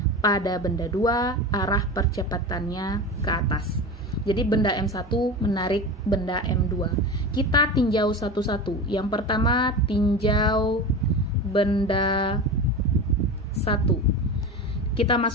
pada benda 2 arah percepatannya ke atas. Jadi benda M1 menarik benda M2. Kita tinjau satu-satu. Yang pertama, tinjau benda 1. Kita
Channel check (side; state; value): both; normal; correlation 0.27